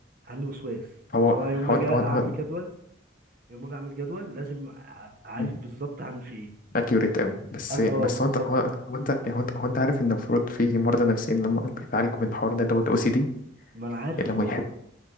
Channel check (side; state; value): both; normal; correlation 0.40